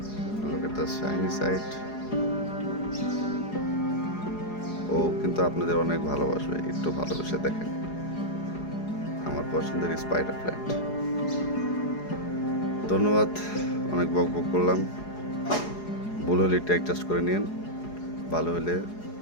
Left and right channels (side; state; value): right; late; 4.8 ms